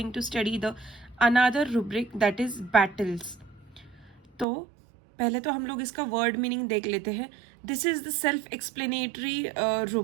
to study the another rubric that is battles. तो पहले तो हम लोग इसका word meaning देख लेते हैं. This is the self explanatory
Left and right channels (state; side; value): drops out; left; at 4.5 s